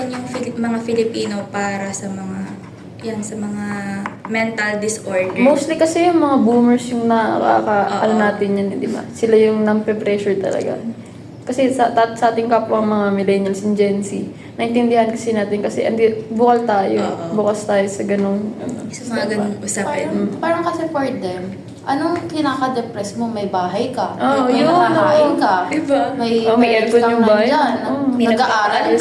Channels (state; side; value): identical; both; correlation 1.00